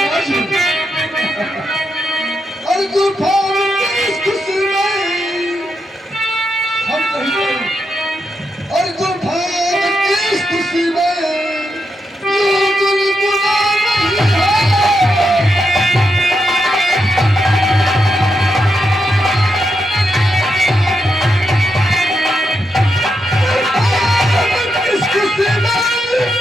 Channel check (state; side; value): normal; both; correlation 0.83